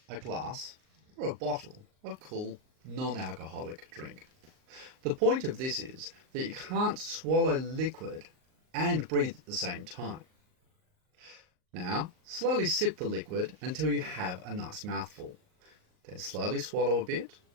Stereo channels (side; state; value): left; late; 38 ms